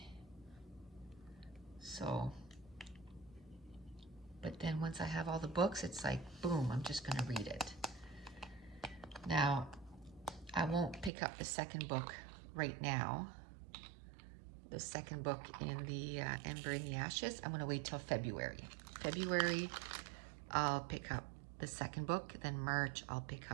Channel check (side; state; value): left; drops out; at 11.1 s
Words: So, but then once I have all the books, it's like, boom, I'm just gonna read it. Now, I won't pick up the second book right now. The second book in the Ember in the Ashes, I'm gonna wait till February. February, I'll pick up the second book. Then March, I'll pick